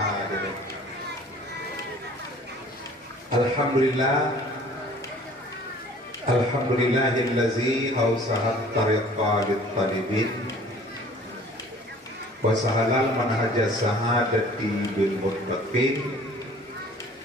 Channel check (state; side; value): normal; both; correlation 0.50